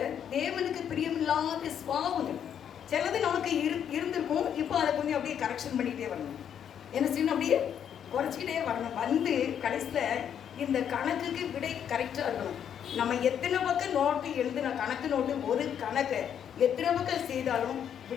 தேவனுக்கு பிரியமில்லாத சுவாபங்கள் சிலது நமக்கு இருந்திருக்கும். இப்போ அதை கொஞ்சம் அப்படியே கரெக்ஷன் பண்ணிகிட்டே வரணும். என்ன செய்யணும், அப்படியே குறைச்சிக்கிட்டே வரணும். வந்து கடைசியில் இந்த கணக்குக்கு விடை கரெக்டாக இருக்கணும். நம்ம எத்தனை பக்கம் நோட்டு எழுதுன கணக்கு நோட்டு ஒரு கணக்கை எத்தனை பக்கம் செய்தாலும்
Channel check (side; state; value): right; quieter; 8.9 dB